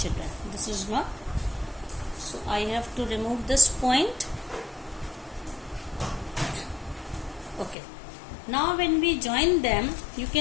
children. This is not. So I have to remove this point. Okay. Now when we join them, you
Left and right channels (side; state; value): right; drops out; at 7.8 s